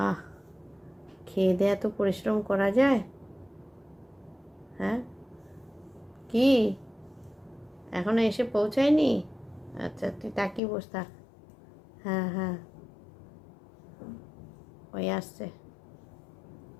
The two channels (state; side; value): drops out; right; at 10.6 s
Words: খেয়ে দেয়া তো পরিশ্রম করা যায়। হ্যাঁ কি, এখনো এসে পৌঁছায়নি? আচ্ছা তুই তাকিয়ে বস থাক। হ্যাঁ হ্যাঁ, ওই আসছে।